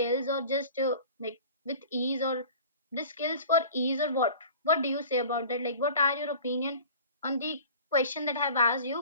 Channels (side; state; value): both; inverted; correlation -0.43